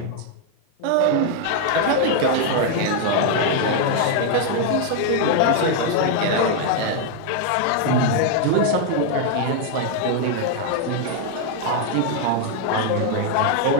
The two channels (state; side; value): different; both; correlation 0.00